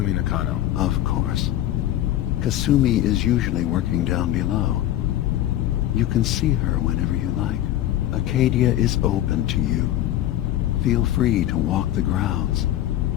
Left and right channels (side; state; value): right; quieter; 13.2 dB